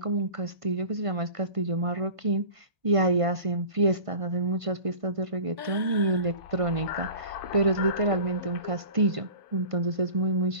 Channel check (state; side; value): late; left; 1.5 ms